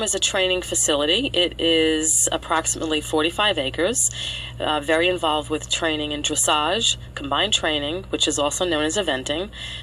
is a training facility. It is approximately 45 acres, very involved with training in dressage, combined training, which is also known as eventing,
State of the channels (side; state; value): both; identical; correlation 1.00